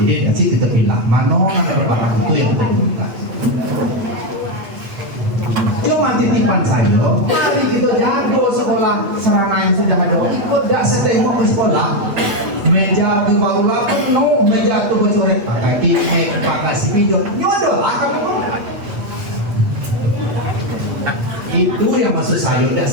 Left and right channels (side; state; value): left; late; 8.5 ms